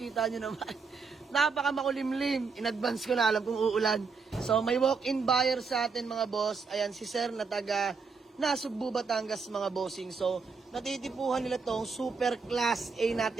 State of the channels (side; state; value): left; quieter; 5.0 dB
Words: nyo naman. Napaka makulimlim, in advance ko na alam kung uulan. So may walk-in buyer sa atin mga boss, ayan si sir na taga Nasugbu, Batangas mga bossing. So natitipuhan nila tong super class A